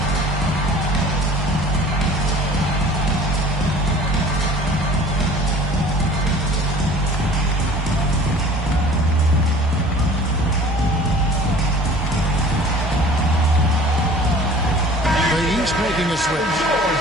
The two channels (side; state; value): both; normal; correlation 0.46